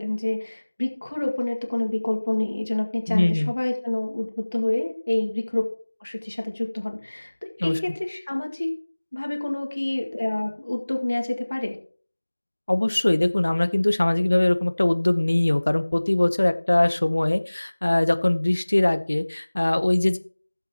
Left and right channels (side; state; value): both; inverted; correlation -1.00